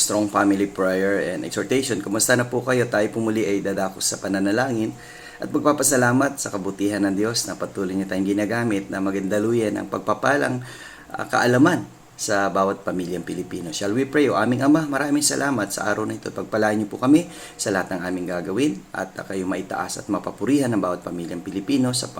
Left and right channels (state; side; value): identical; both; correlation 1.00